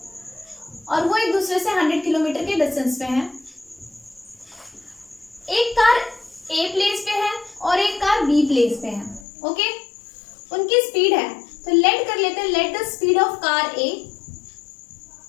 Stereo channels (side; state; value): right; drops out; at 9.2 s